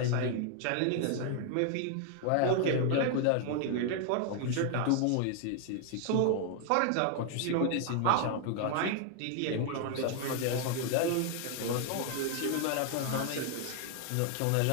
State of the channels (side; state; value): both; different; correlation 0.00